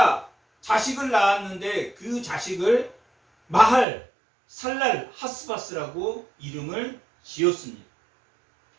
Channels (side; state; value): left; drops out; at 3.9 s